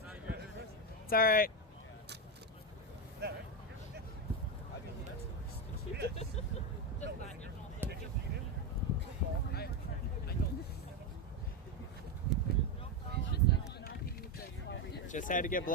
It's all right. Just had to get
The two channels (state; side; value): normal; both; correlation 0.10